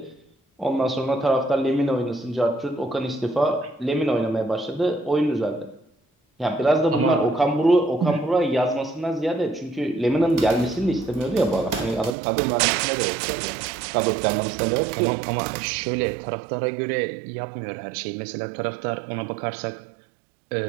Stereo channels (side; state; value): left; drops out; at 12.2 s